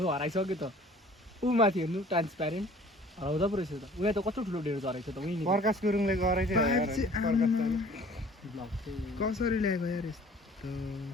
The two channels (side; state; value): both; normal; correlation 0.51